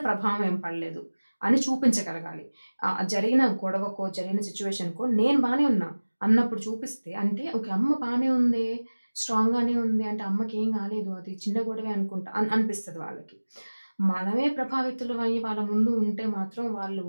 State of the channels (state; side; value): inverted; both; correlation -1.00